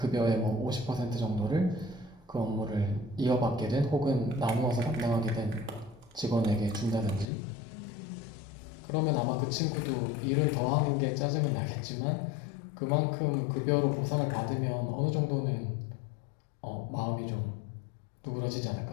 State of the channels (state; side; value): drops out; right; at 7.2 s